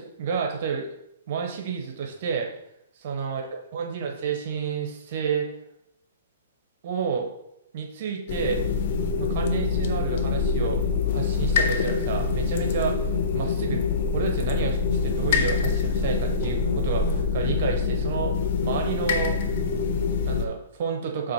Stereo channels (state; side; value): inverted; both; correlation -0.37